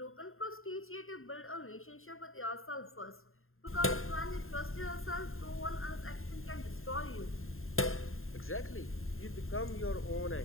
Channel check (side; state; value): right; late; 0.61 ms